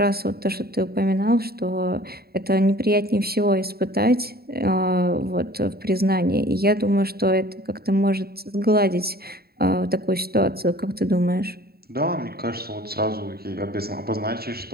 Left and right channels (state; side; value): late; left; 0.45 ms